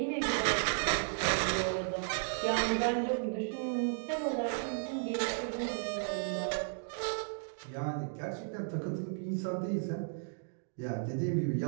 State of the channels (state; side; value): silent; left; digital silence